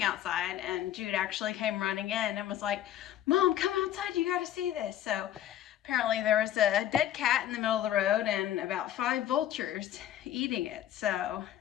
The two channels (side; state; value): right; quieter; 11.6 dB